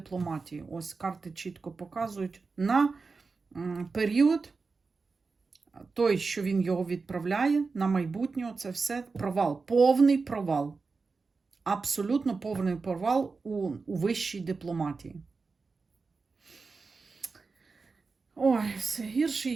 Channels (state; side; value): quieter; left; 4.4 dB